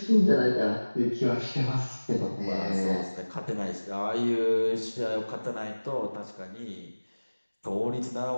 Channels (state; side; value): inverted; both; correlation -1.00